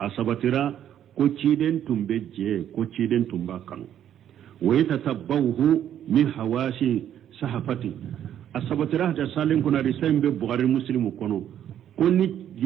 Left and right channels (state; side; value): quieter; left; 10.4 dB